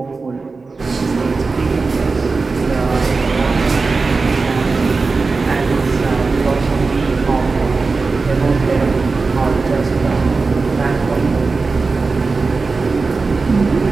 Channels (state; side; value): quieter; left; 4.1 dB